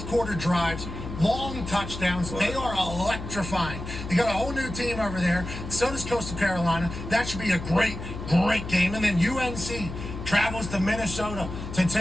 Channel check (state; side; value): noise; left; hum, 9 dB below the sound